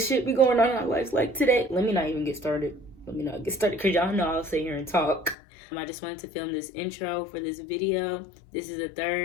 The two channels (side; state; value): right; drops out; at 5.4 s